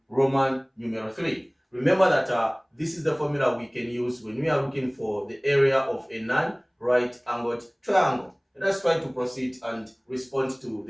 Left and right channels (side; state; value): both; identical; correlation 1.00